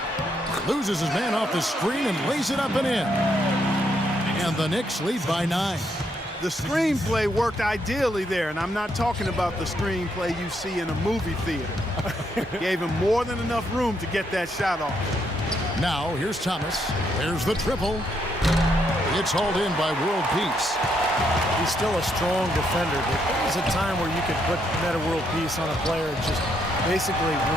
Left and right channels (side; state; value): both; normal; correlation 0.76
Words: Loses his man off the screen and lays it up and in. And the Knicks lead by 9. The screenplay worked ideally there, and I'm not talking about the screenplay you see in a movie theater. Gave him more than enough room to get that shot off. Now, here's Thomas. There's the triple. It's hauled in by World Peace. He's still a strong defender, but there was a time where you could put Meta World Peace on a player and just basically